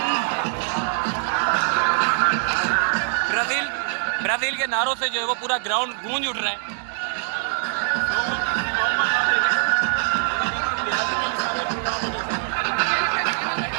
ब्राज़ील के नारों से जो है वो पूरा ग्राउंड गूंज उठ रहा है।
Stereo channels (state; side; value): silent; left; 63 dB below the other